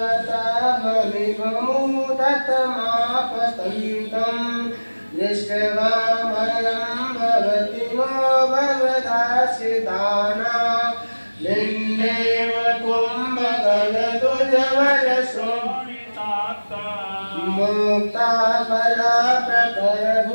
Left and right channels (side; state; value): both; inverted; correlation -1.00